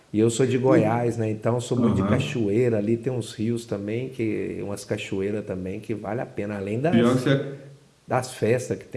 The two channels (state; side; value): identical; both; correlation 1.00